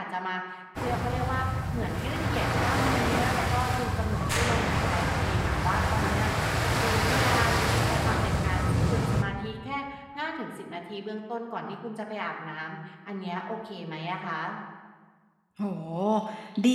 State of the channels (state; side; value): identical; both; correlation 1.00